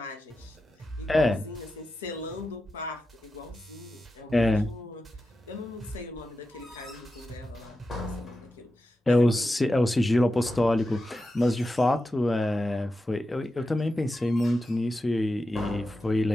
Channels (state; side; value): normal; both; correlation 0.90